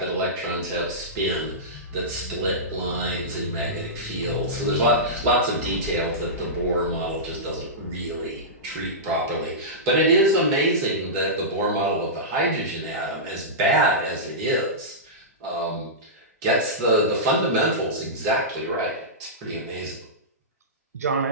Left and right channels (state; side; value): normal; both; correlation -0.16